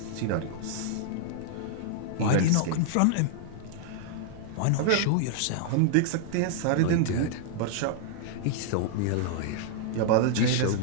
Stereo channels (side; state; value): both; different; correlation -0.01